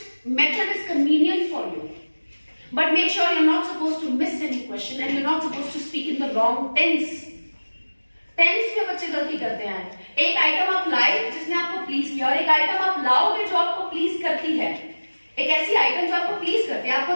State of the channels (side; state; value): both; inverted; correlation -1.00